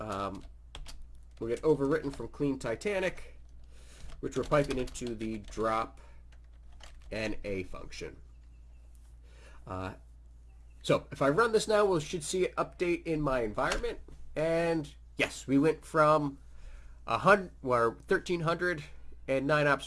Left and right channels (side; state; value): both; identical; correlation 1.00